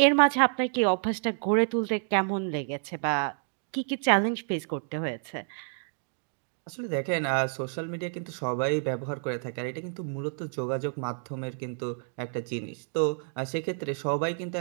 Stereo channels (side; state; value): left; silent; 58 dB below the other